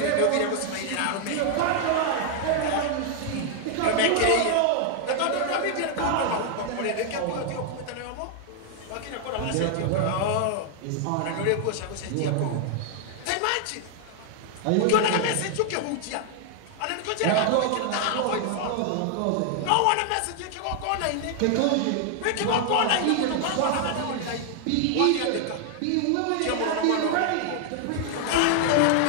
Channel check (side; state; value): both; different; correlation 0.00